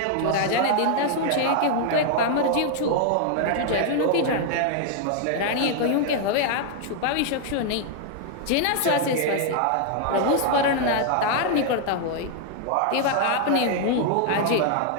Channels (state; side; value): different; both; correlation 0.00